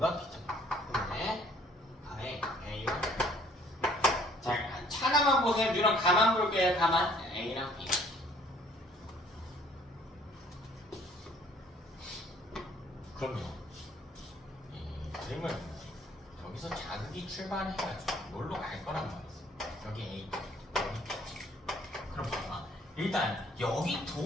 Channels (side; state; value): both; normal; correlation 0.58